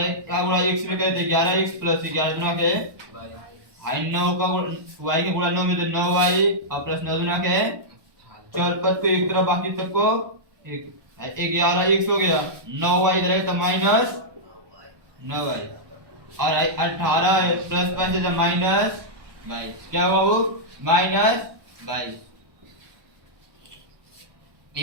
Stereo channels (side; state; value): left; late; 1.2 ms